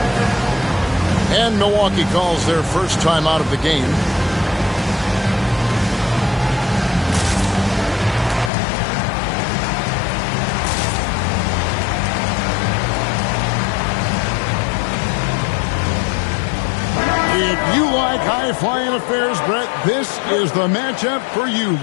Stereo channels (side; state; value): right; drops out; at 8.5 s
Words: And Milwaukee calls their first time out of the game. If you like high-flying affairs, Brett, this is the matchup for you.